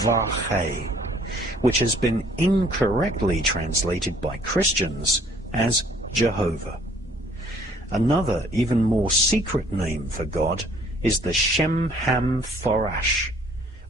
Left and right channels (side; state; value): both; normal; correlation 0.59